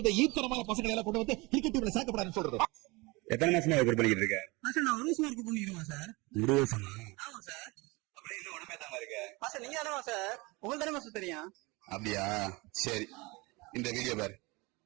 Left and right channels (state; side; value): quieter; left; 24.8 dB